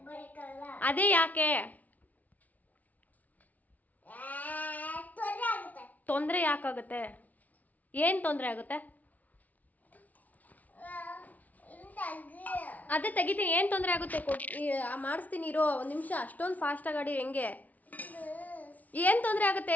ಅದೇ ಯಾಕೆ? ತೊಂದರೆ ಯಾಕಾಗುತ್ತೆ? ಏನು ತೊಂದರೆ ಆಗುತ್ತೆ? ಅದೇ ತೆಗಿತೀನಿ. ಏನು ತೊಂದರೆ ಆಗುತ್ತೆ? ಮಾಡಿಸ್ತೀನಿ ಇರೋ ಒಂದು ನಿಮಿಷ. ಅಷ್ಟೊಂದು ಫಾಸ್ಟಾಗಿ ಆಡಿ ಹೆಂಗೆ? ಏನು ತೊಂದರೆ ಆಗುತ್ತೆ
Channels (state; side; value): late; right; 0.075 ms